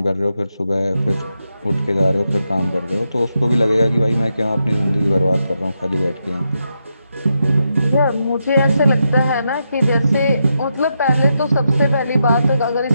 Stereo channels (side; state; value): both; inverted; correlation -0.84